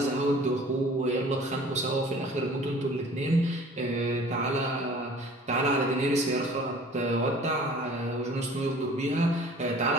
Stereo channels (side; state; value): both; normal; correlation 0.48